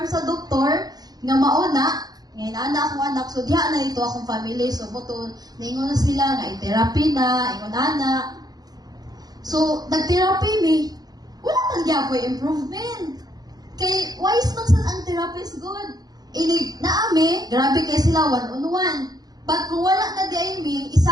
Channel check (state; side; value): late; left; 0.19 ms